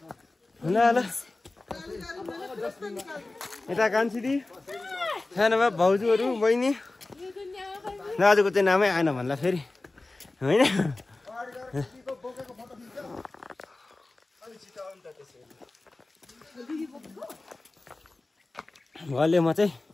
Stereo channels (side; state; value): right; quieter; 3.1 dB